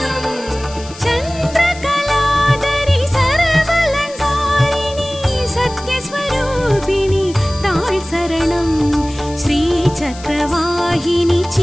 चन्द्रकलाधरि सर्वलङ्कारिणि सत्यस्वरूपिणि ताळ் சரணம் श्रीचक्रवाहिनि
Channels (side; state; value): left; noise; hiss, 18 dB below the sound